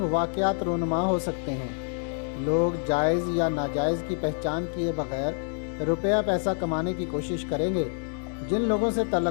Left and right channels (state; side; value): silent; right; digital silence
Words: वाक़यात रूनुमा हो सकते हैं। लोग जायज़ या नाजायज़ की पहचान किए बगैर रुपया पैसा कमाने की कोशिश करेंगे। जिन लोगों से